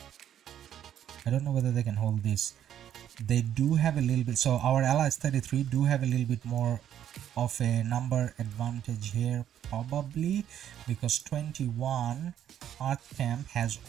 I don't know whether they can hold this. They do have a little bit, so our allies 33 do have a little bit more of a number advantage here, probably because 21 Earth Camp has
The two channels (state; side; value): quieter; left; 10.3 dB